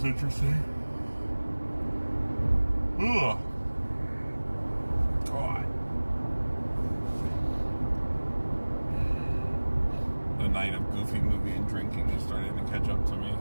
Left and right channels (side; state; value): both; inverted; correlation -1.00